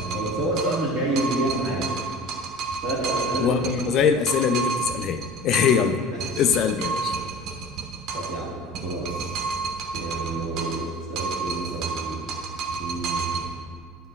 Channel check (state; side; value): normal; both; correlation 0.40